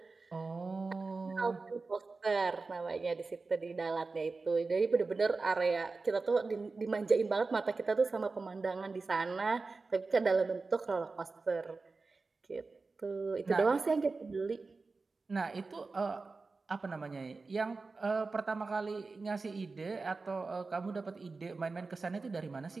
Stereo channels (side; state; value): left; quieter; 4.0 dB